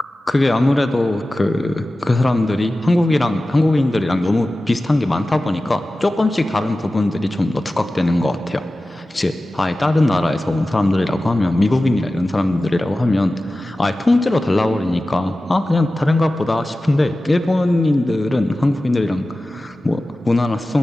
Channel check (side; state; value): both; normal; correlation 0.95